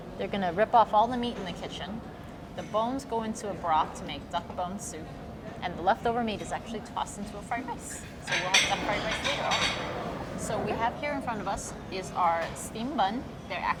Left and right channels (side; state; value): both; identical; correlation 1.00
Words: they're gonna rip off all the meat in the kitchen. The bones go into a broth to make duck bone soup. And the leftover meat is actually tossed into a fried rice. So we'll have duck fried rice later also. So we have here in front of us is our steam bun. They're